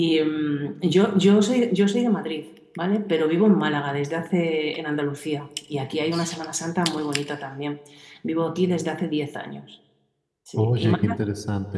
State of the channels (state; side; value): identical; both; correlation 1.00